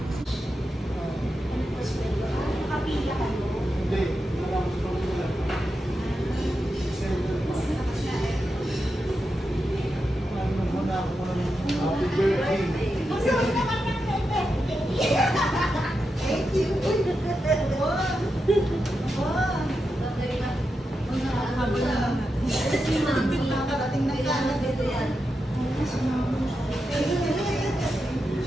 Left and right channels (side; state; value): both; normal; correlation 0.88